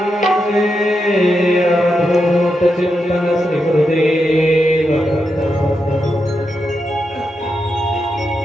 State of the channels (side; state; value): both; normal; correlation 0.85